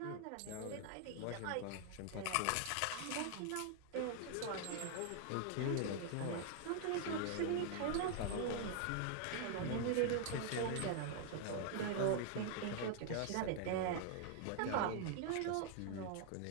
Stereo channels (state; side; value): different; both; correlation 0.00